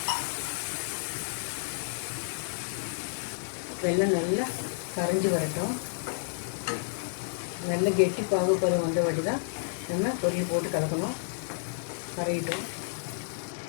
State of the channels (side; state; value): right; silent; 56 dB below the other